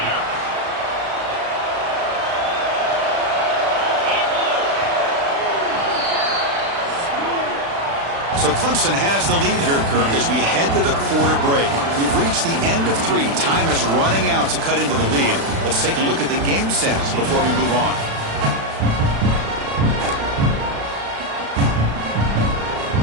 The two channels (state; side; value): late; left; 36 ms